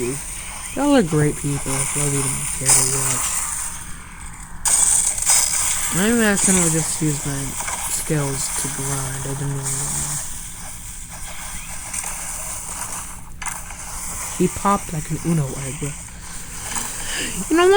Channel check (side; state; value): both; identical; correlation 1.00